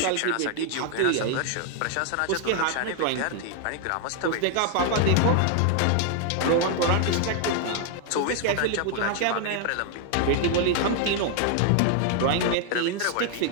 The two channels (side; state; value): both; different; correlation 0.00